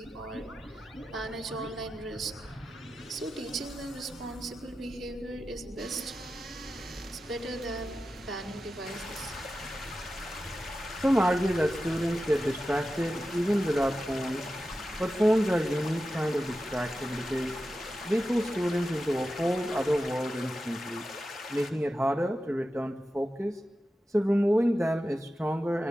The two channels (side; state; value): both; normal; correlation 0.92